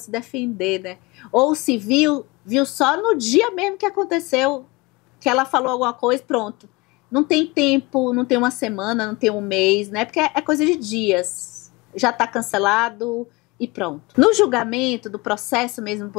defender, né? Ou se viu só no dia mesmo que aconteceu, que ela falou alguma coisa, pronto. Não tem tempo, não tem uma semana, não tem um mês, né? Porque é coisa de dias. Já está cancelado e pronto. No julgamento do processo mesmo do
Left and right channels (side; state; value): right; quieter; 24.1 dB